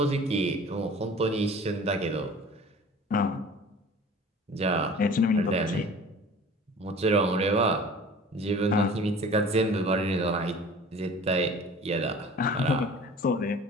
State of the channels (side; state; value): both; normal; correlation 0.43